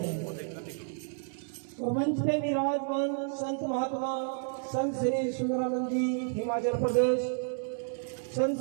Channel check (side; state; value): left; silent; digital silence